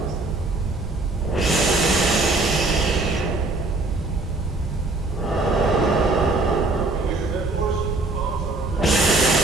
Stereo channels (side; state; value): left; quieter; 3.1 dB